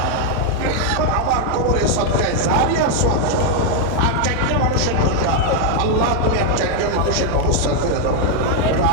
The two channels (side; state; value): both; different; correlation 0.00